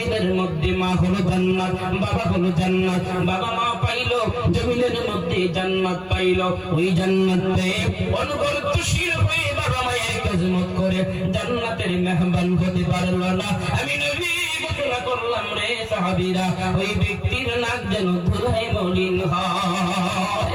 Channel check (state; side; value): identical; both; correlation 1.00